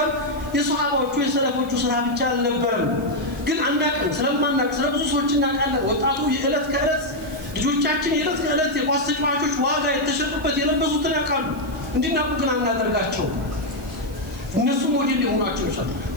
የሱሐባዎቹ የሰለፎቹ ስራ ብቻ አልነበረም። ግን አናውቅም፣ ስለማናውቅ ስለብዙ ሰዎች እናውቃለን። ወጣቱ የዕለት ከዕለት ልጆቻችን የዕለት ከዕለት የኳስ ተጫዋቾች ዋጋ የተሸጡበት የለበሱትን ያውቃሉ። እንዲናቁ ግን አናደርጋቸው። እነሱ ሞዴል ሊሆናቸው ይችላል።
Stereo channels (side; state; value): right; noise; hiss, 23 dB below the sound